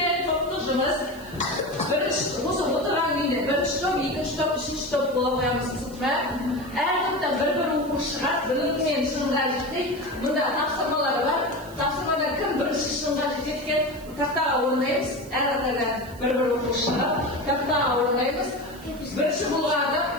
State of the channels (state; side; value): noise; right; hiss, 22 dB below the sound